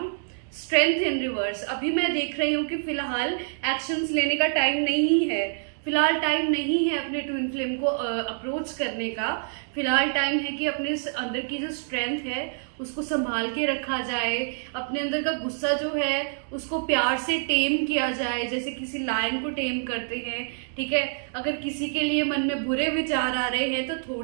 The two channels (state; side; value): silent; left; digital silence